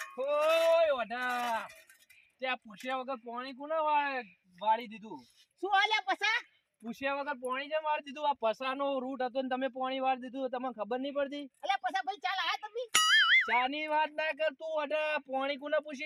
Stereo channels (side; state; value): both; identical; correlation 1.00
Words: ઓય વડા ત્યાં પૂછ્યા વગર પાણી કોને વાળી દીધું શું આલ્યા પસા પૂછ્યા વગર પાણી જેમ વાળી દીધું આ પસાનો રૂટ હતો ને તમે પાણી વાળી દીધું તમને ખબર નહીં પડતી અલ્યા પસા ભાઈ ચાલ આ તમે ચાની વાત ના કર તું વડા પાણી કોને